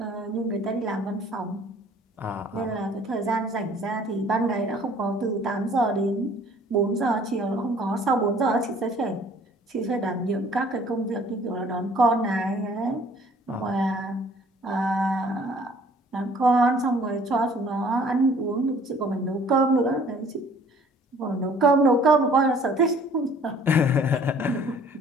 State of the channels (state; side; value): normal; both; correlation 0.55